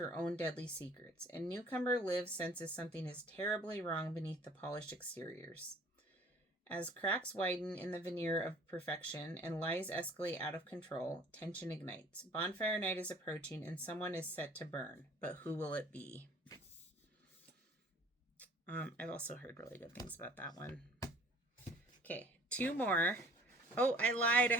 own deadly secrets, and newcomer Liv senses something is terribly wrong beneath the polished exteriors. As cracks widen in the veneer of perfection and lies escalate out of control, tension ignites. Bonfire night is approaching and someone is set to burn. But who will it be? I've also heard really good things about that one. Okay, 2 more. Oh, I lied. I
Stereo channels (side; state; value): both; normal; correlation 0.52